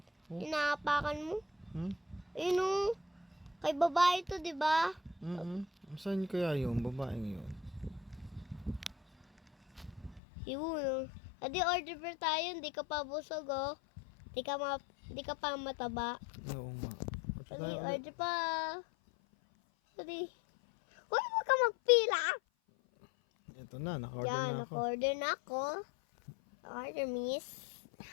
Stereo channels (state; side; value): drops out; right; at 10.2 s